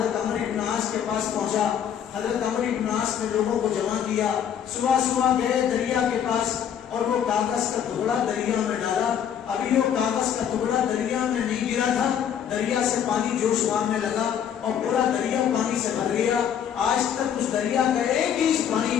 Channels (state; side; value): quieter; right; 8.9 dB